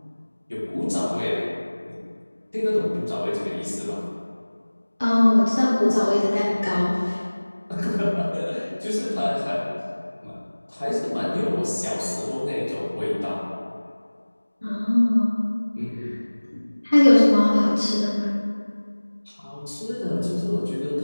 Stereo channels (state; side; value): inverted; both; correlation -1.00